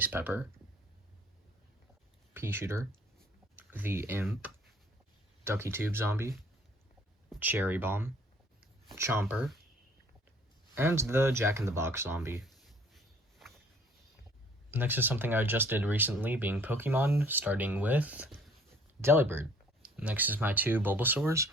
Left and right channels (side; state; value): both; normal; correlation 0.56